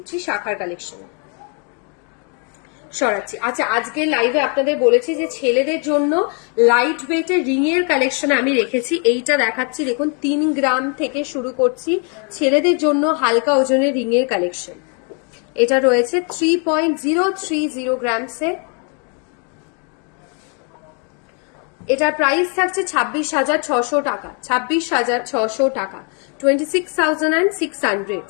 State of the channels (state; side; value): quieter; right; 38.1 dB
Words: শাখার কালেকশন। সরাচ্ছি। আচ্ছা, আজকে লাইভে আপনাদের বলেছি যে ছেলেদের জন্য লাইট ওয়েটের রিং এর কালেকশন আমি রেখেছি, এইটা দেখাচ্ছি। দেখুন 3 গ্রাম থেকে শুরু করছি, ছেলেদের জন্য হালকা ওজনের রিং এর কালেকশন। এটা রয়েছে 3.030 গ্রামসে। এটার প্রাইস থাকছে 26,600 টাকা, 26,600 টাকা, 26,600,